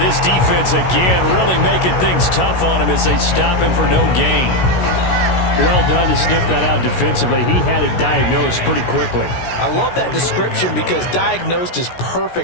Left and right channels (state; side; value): late; right; 16 ms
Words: this defense again really making things tough on him as they stop him for no gain. Well done to sniff that out defensively. He had it diagnosed pretty quickly. I love that description because diagnosed is